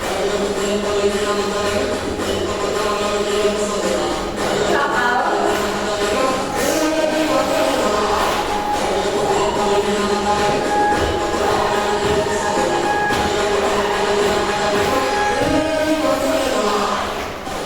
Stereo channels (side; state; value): both; identical; correlation 1.00